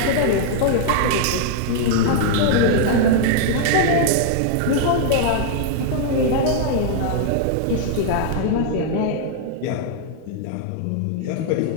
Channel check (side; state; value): both; different; correlation -0.01